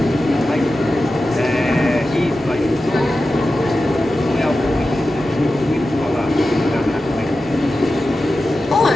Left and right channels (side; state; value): both; normal; correlation 0.93